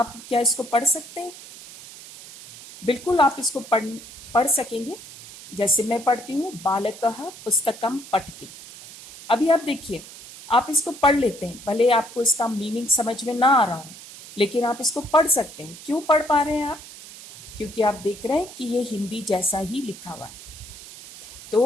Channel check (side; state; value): right; noise; hiss, 16 dB below the sound